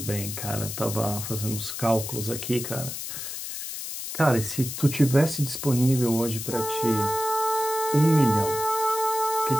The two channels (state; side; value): noise; left; hiss, 7 dB below the sound